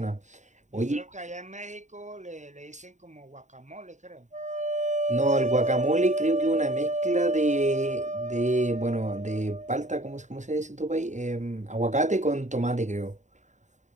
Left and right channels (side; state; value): left; late; 0.34 ms